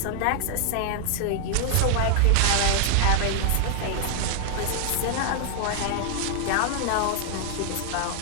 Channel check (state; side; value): different; both; correlation 0.00